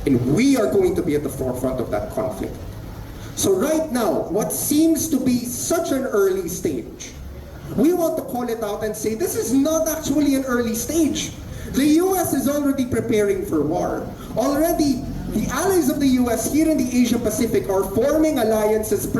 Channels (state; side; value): identical; both; correlation 1.00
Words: and we are going to be at the forefront of that conflict. So right now, what seems to be such an early stage, we want to call it out and say this is not actually an early stage. The US is already preparing for war. Already, the allies of the US here in the Asia Pacific are forming alliances